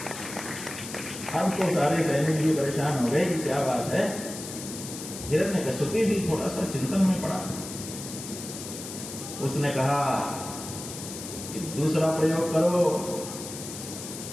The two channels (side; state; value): left; noise; hiss, 10 dB below the sound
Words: अब तो सारे सैनिक भी परेशान हो गए कि क्या बात है। हिरण्यकश्यप भी थोड़ा सा चिंतन में पड़ा। उसने कहा कि दूसरा प्रयोग करो।